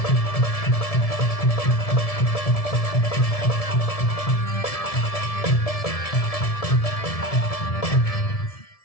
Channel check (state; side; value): late; right; 1.7 ms